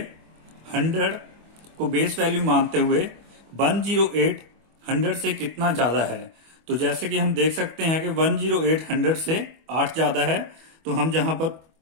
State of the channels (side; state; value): left; late; 25 ms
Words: 100 को बेस वैल्यू मानते हुए 108 100 से कितना ज्यादा है। तो जैसे कि हम देख सकते हैं कि 108 100 से 8 ज्यादा है, तो हम जहां पर